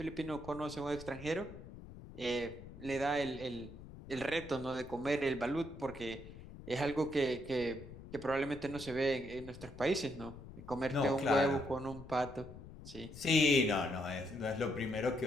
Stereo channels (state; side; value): noise; left; rumble, 15 dB below the sound